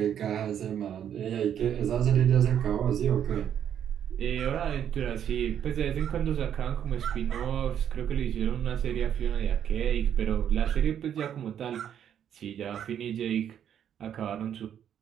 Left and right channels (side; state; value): left; quieter; 9.4 dB